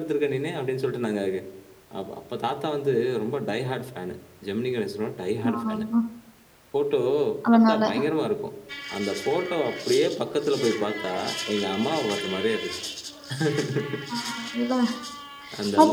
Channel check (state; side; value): identical; both; correlation 1.00